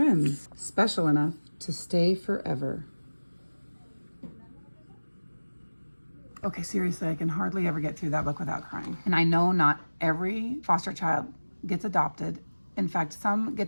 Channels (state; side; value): inverted; both; correlation -1.00